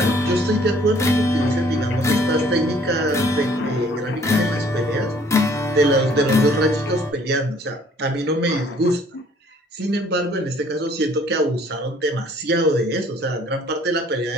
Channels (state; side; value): normal; both; correlation 0.58